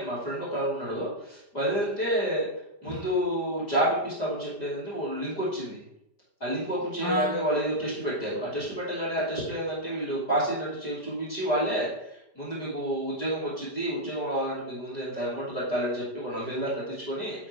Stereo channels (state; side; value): late; right; 5.0 ms